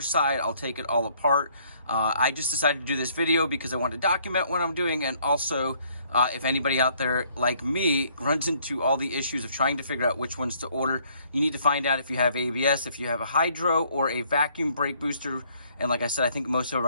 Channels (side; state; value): both; inverted; correlation -0.65